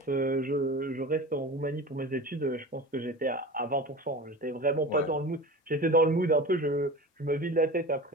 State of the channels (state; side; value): normal; both; correlation 0.33